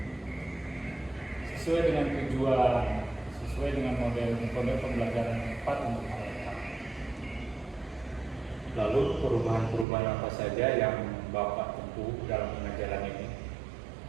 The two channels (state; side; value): drops out; left; at 9.9 s